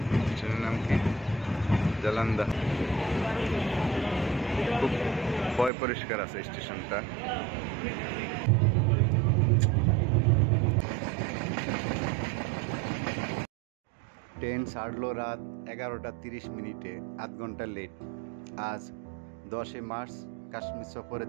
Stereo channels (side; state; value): left; drops out; at 5.7 s